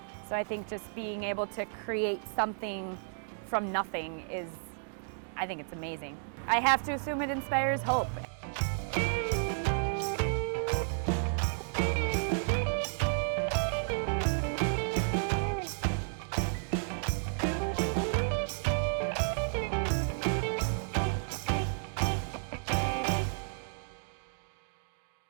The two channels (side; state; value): left; silent; digital silence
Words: So I think just being able to create something from nothing I think it's amazing. I have to assume it inspires hope.